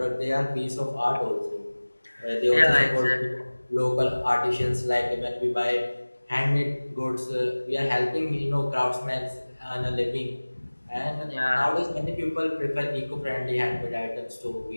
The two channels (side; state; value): both; inverted; correlation -1.00